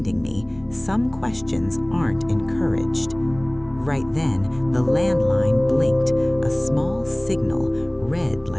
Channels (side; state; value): left; noise; rumble, 26 dB below the sound